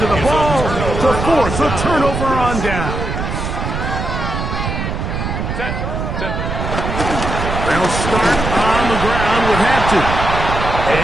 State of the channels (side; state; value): right; noise; rumble, 4 dB below the sound